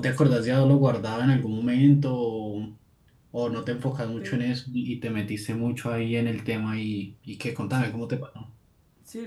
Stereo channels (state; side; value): identical; both; correlation 1.00